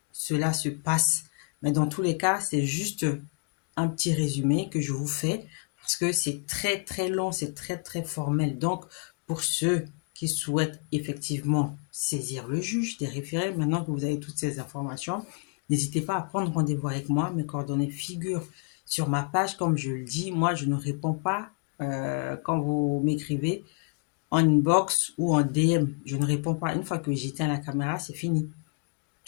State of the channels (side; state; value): right; quieter; 36.3 dB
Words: cela se passe. Mais dans tous les cas, c'est juste un petit résumé que je vous fais parce que c'est très, très long, c'est très, très formel. Donc, pour ceux qui souhaitent effectivement saisir le juge des référés, maintenant que vous avez toutes ces informations, n'hésitez pas à prendre rendez-vous avec moi. Mes coordonnées figurent sur ma page. Comme je le dis, moi, je ne réponds pas quand vous m'écrivez en inbox ou en DM. Je ne réponds pas. Une fois que j'éteins la caméra, c'est fini.